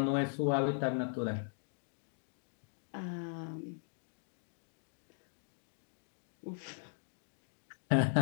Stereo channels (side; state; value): right; silent; digital silence